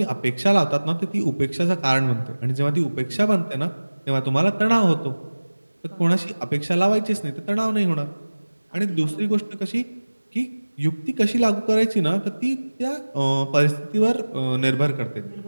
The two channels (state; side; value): inverted; both; correlation -1.00